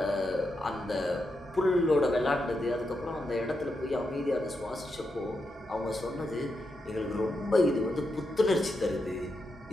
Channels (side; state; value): both; normal; correlation 0.85